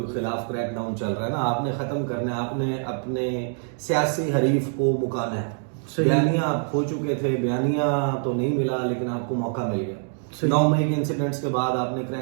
خلاف کریک ڈاؤن چل رہا ہے نا، آپ نے ختم کرنا ہے، آپ نے اپنے سیاسی حریف کو مکانا ہے۔ بیانیہ آپ کھو چکے تھے، بیانیہ تو نہیں ملا لیکن آپ کو موقع مل گیا۔ 9 مئی کے انسیڈنٹس کے بعد آپ نے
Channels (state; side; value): silent; left; 56 dB below the other